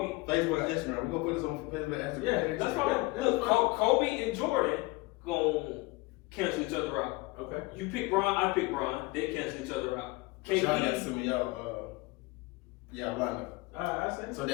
Facebook and Instagram. We're gonna put this on Facebook and Instagram. Yeah, That's fine. Look, Kobe and Jordan gonna cancel each other out. Okay. You pick Bron, I pick Bron. They cancel each other out. Y'all got to KD, send me y'all lineup. I say. So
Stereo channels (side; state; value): right; quieter; 22.7 dB